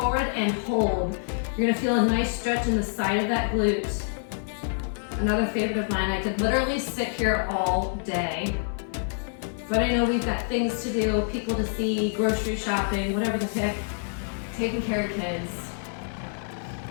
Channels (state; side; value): silent; right; 60 dB below the other